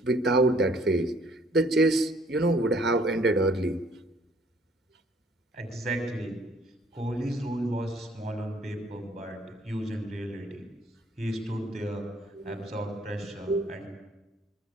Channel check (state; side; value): normal; both; correlation 0.60